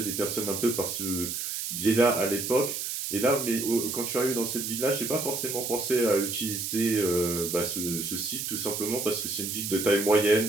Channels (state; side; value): noise; right; hiss, 4 dB below the sound